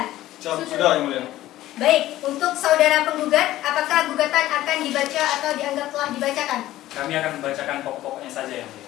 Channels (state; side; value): quieter; right; 15.0 dB